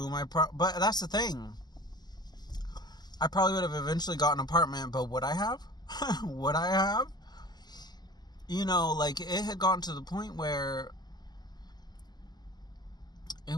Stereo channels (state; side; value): late; right; 0.20 ms